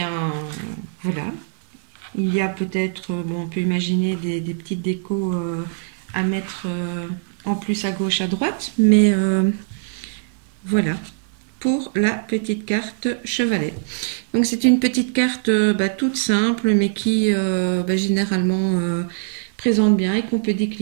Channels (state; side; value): silent; left; digital silence